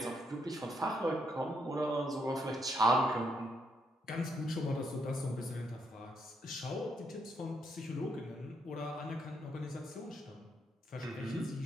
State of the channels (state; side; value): normal; both; correlation 0.76